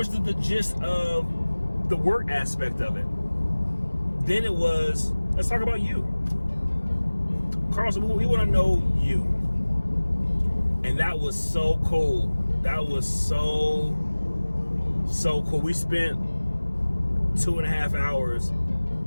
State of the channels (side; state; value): both; inverted; correlation -1.00